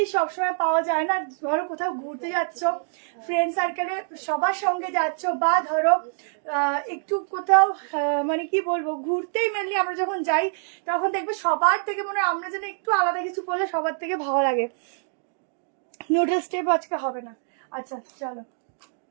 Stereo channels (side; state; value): left; silent; digital silence